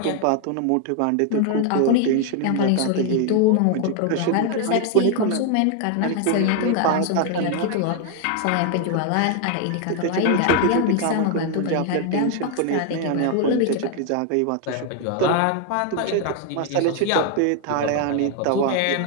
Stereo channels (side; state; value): both; different; correlation 0.01